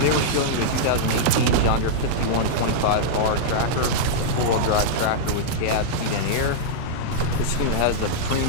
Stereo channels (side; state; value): both; different; correlation -0.03